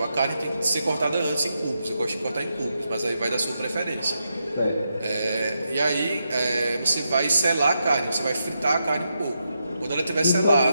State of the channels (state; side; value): inverted; both; correlation -0.84